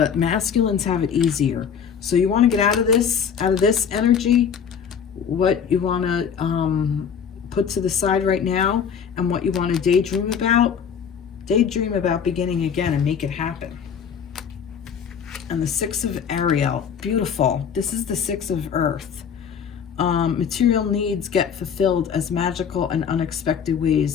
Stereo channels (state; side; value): quieter; right; 7.3 dB